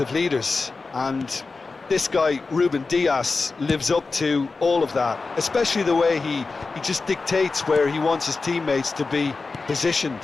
leaders, and this guy, Ruben Dias, lives up to all of that, especially the way he just dictates where he wants his teammates to be positioned.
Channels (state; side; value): quieter; right; 4.0 dB